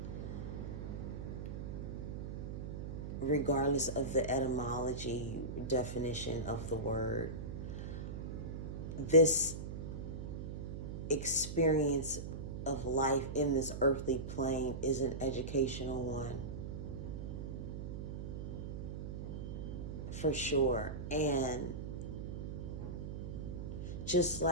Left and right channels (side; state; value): right; noise; hum, 6 dB below the sound